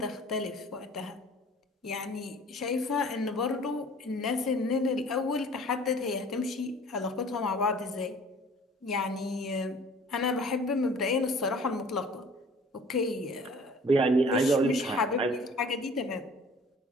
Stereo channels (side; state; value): both; normal; correlation 0.49